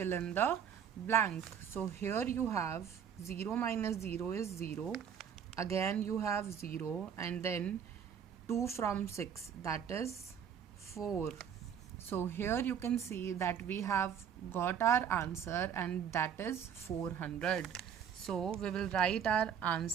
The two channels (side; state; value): left; quieter; 8.1 dB